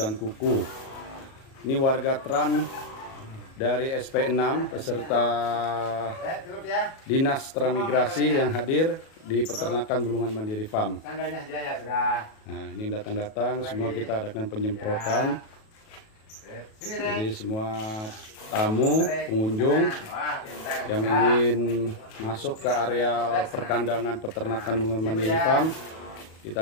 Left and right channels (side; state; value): right; late; 37 ms